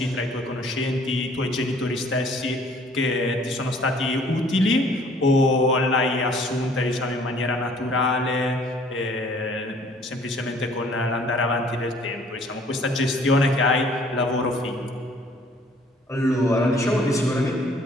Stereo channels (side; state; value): both; normal; correlation 0.57